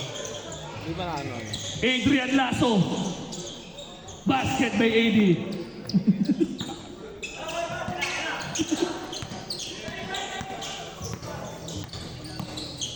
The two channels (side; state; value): both; identical; correlation 1.00